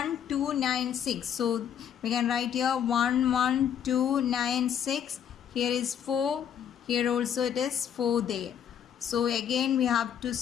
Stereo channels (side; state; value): right; quieter; 8.9 dB